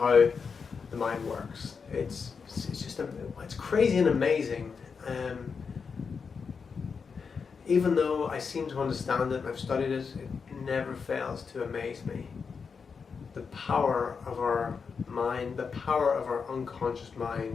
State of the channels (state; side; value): quieter; right; 5.6 dB